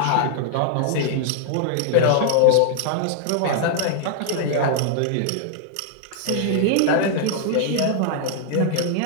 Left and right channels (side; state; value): both; different; correlation -0.01